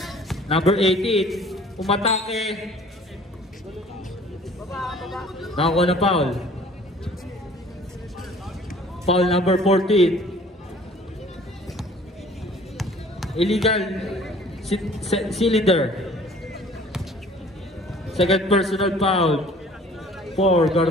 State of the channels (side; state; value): both; normal; correlation 0.51